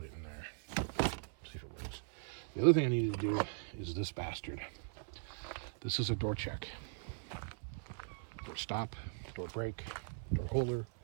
it in there, see if it works. The other thing I need to do is this bastard. This is a door check. Door stop, door brake, door holder,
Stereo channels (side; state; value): left; silent; 51 dB below the other